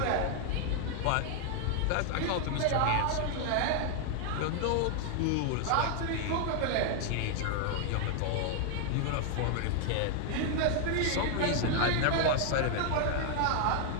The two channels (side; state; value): both; different; correlation 0.00